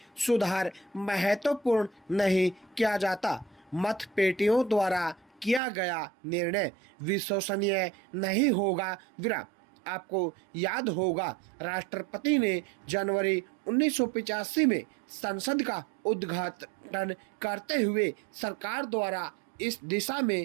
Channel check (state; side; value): drops out; left; at 5.6 s